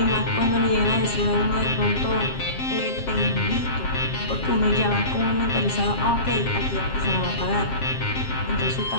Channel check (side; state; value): right; late; 7.5 ms